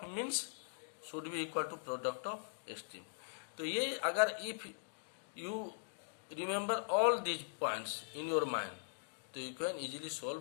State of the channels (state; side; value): silent; right; digital silence